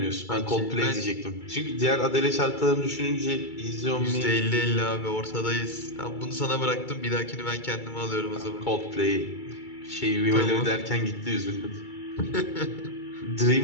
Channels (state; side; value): late; right; 2.3 ms